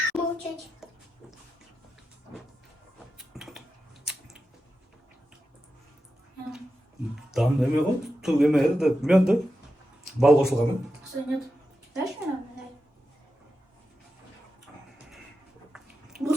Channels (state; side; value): normal; both; correlation 0.90